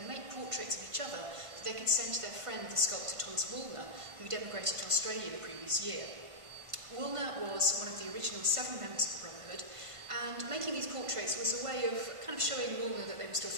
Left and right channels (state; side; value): late; left; 1.5 ms